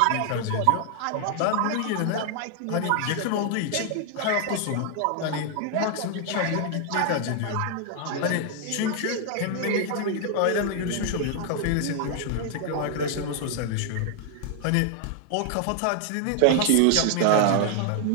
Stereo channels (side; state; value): both; different; correlation 0.00